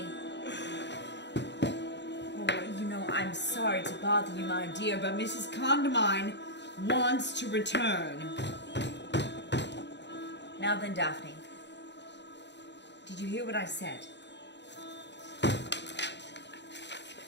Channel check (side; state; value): right; late; 0.51 ms